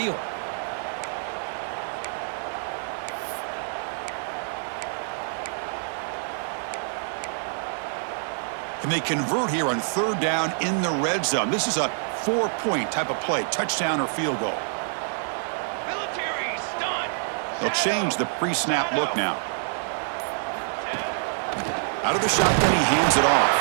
And they convert here on 3rd down in the red zone. This is a 4-point type of play, touchdown or field goal. They'll change the pre-snap look now. Out of the shotgun, he hands it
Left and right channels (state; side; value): silent; left; digital silence